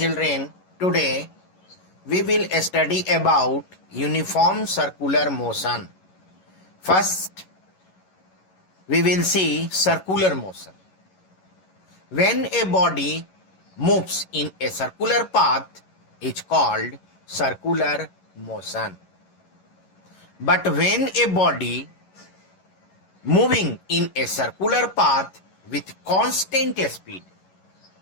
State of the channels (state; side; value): late; right; 11 ms